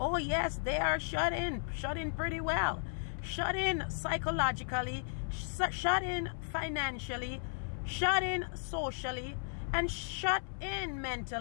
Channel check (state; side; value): silent; right; 54 dB below the other